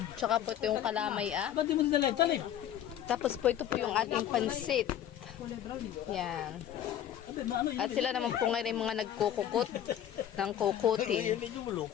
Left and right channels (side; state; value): right; quieter; 10.7 dB